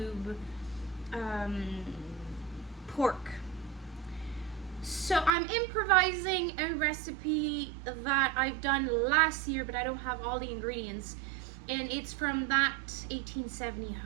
pork. So I'm improvising a recipe that I've done last year, but I don't have all the ingredients, and it's from that 1870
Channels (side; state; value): left; drops out; at 5.3 s